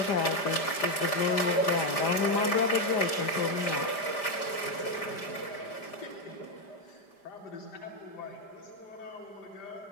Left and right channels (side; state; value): right; late; 5.1 ms